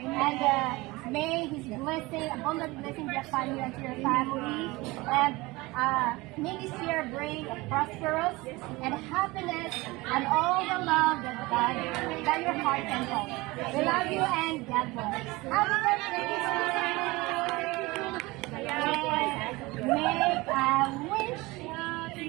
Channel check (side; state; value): left; quieter; 22.0 dB